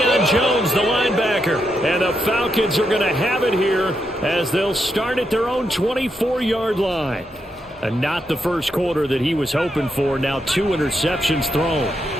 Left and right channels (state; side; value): normal; both; correlation 0.82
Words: Jones, the linebacker. And the Falcons are going to have it here as they'll start at their own 24-yard line. And not the first quarter that he was hoping for. Now 2 interceptions thrown.